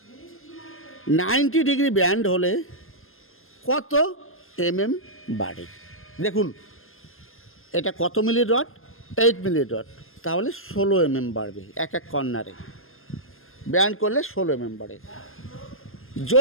90 ডিগ্রি ব্যান্ড হলে কত বাড়ে? দেখুন এটা কত মিলি রড? 8 মিলি রড, তাহলে 16 বাড়বে এক এক কর্নারে। ব্যান্ড করলে 16 বাড়ে।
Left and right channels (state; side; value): late; right; 0.60 ms